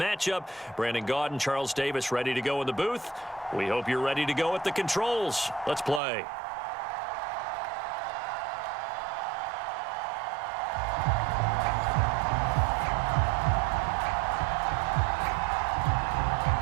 Brandon Gaudin, Charles Davis ready to go in the booth. We hope you're ready to go at the controls. Let's play.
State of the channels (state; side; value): drops out; left; at 6.0 s